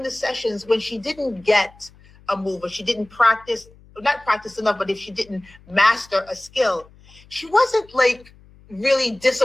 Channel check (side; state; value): left; noise; hum, 26 dB below the sound